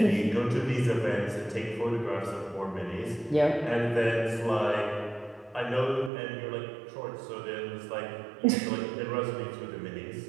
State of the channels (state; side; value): drops out; left; at 6.1 s